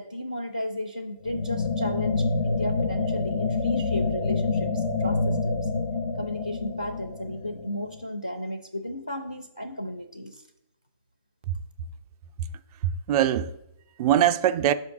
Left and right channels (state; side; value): inverted; both; correlation -0.49